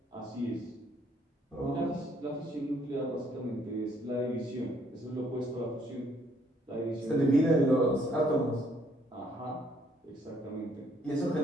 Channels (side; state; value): both; normal; correlation 0.67